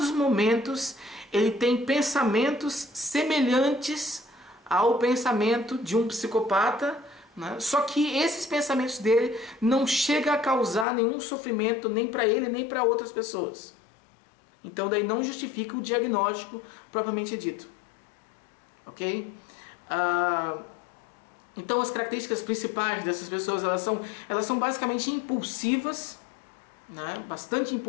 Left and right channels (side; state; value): right; drops out; at 10.9 s